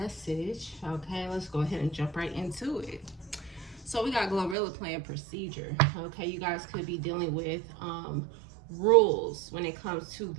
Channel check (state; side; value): drops out; left; at 4.5 s